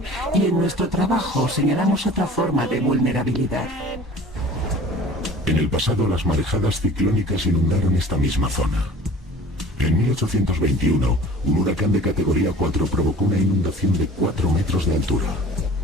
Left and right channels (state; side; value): normal; both; correlation 0.44